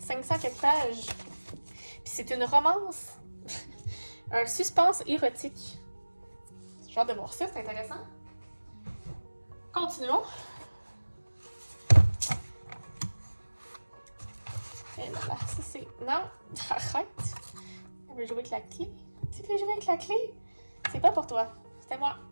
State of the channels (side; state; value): both; inverted; correlation -1.00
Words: 500 quelques pages. Puis c'est une romance. Un suspense érotique. J'ai hâte de voir ça, c'est intéressant. Continuons. Et là, ça c'est... Non, arrête. Elle veut jouer avec la clé. Tu veux jouer avec la clé? C'est pas pour toi. C'était moi.